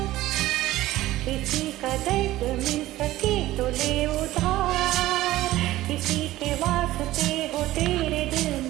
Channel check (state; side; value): quieter; left; 16.0 dB